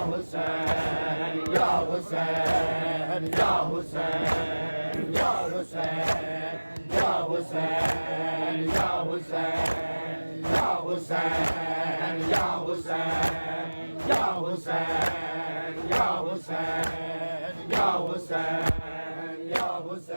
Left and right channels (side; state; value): both; inverted; correlation -1.00